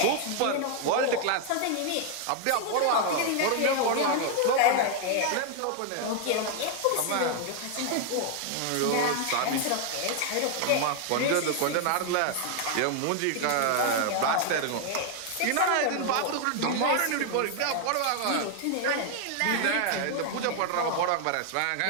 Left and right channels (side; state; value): both; different; correlation 0.00